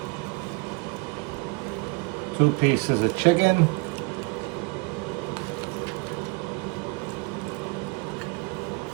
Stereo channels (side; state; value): left; quieter; 29.0 dB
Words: 2 pieces of chicken.